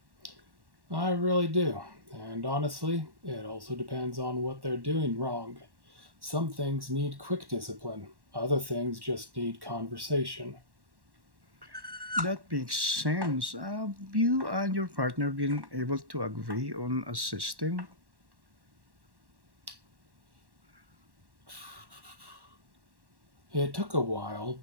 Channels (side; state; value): left; late; 1.1 ms